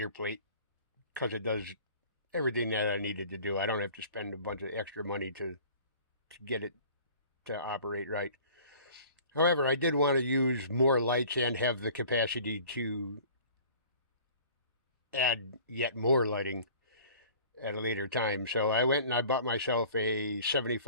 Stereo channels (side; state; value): both; inverted; correlation -0.49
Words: plate because it does everything that I needed to do. I don't have to spend a bunch of extra money to get it to operate right. However, I did want to use more lights and have the capacity to add yet more lighting at a later time. So I went and I bought myself a